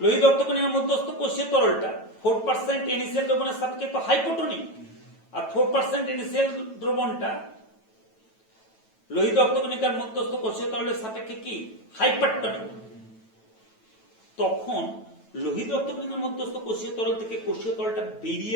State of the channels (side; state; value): right; late; 9.1 ms